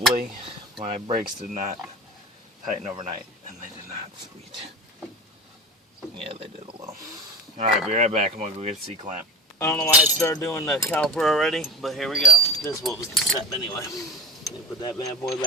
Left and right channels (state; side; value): normal; both; correlation 0.33